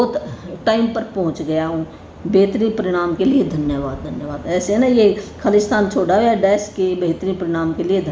टाइम पर पहुंच गया हूँ, बेहतरीन परिणाम के लिए धन्यवाद धन्यवाद। ऐसे ना ये खालिस्तान छोड़ा हुआ डैश के बेहतरीन परिणाम के लिए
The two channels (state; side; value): identical; both; correlation 1.00